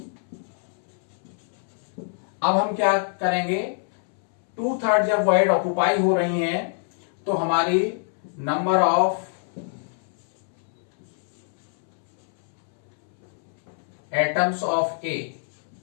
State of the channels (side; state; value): right; silent; 62 dB below the other